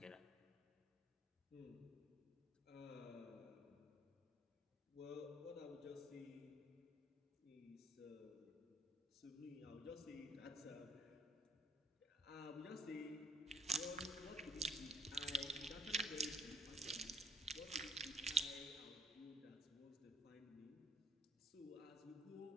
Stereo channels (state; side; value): normal; both; correlation 0.66